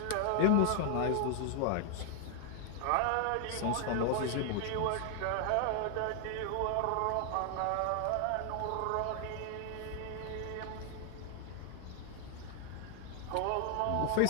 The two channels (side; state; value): both; different; correlation 0.00